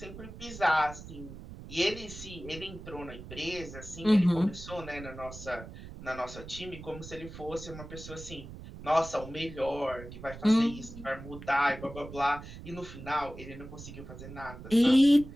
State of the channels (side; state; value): right; noise; rumble, 13 dB below the sound